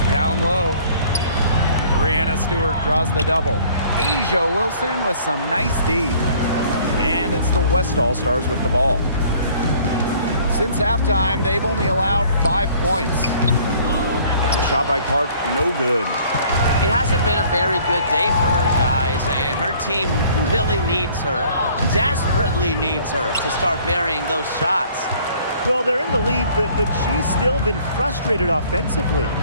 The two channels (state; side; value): inverted; both; correlation -0.55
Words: Down low. Brianna Stewart draws the double. Asia Wilson with some nice D. And it's the West All-Stars with the ball. Since halftime, they've only allowed 5 points. And the shot by Clark, no good. It hasn't been a very good day for her, guys, and her team really needs her, desperately needs her to start burying those shots. Well, they're in the lead, but she's still been frustrated offensively.